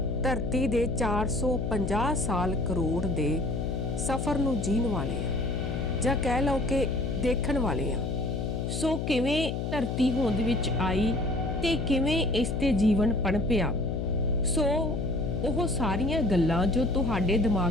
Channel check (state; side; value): noise; left; hum, 2 dB below the sound